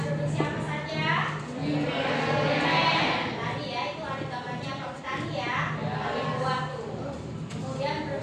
produksi apa saja? Tadi ya, itu ada gambarnya Pak Petani ya. Ada buah tuh. Kemudian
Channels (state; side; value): identical; both; correlation 1.00